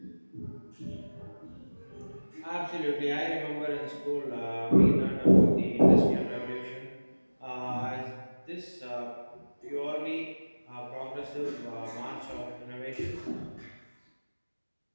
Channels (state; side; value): inverted; both; correlation -1.00